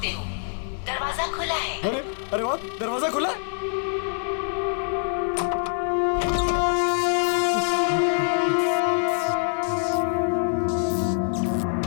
हो। दरवाजा खुला है। अरे वाह, दरवाजा खुला है।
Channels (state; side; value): silent; right; 62 dB below the other